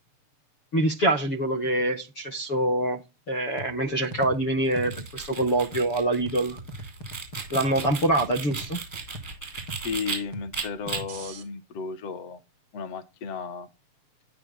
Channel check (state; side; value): late; right; 7.0 ms